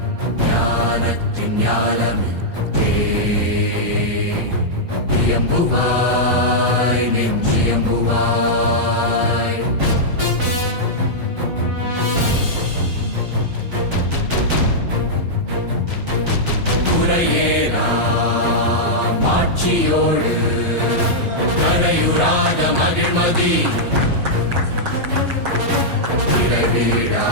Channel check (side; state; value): left; late; 7.2 ms